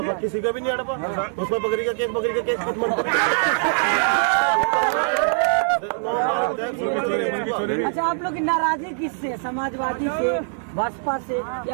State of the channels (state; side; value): silent; left; 64 dB below the other